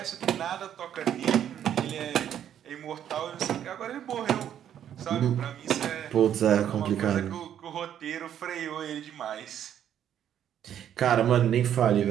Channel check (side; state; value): left; quieter; 10.0 dB